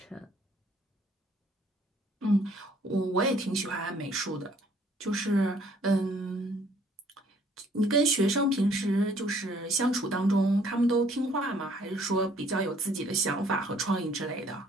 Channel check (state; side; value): normal; both; correlation 0.61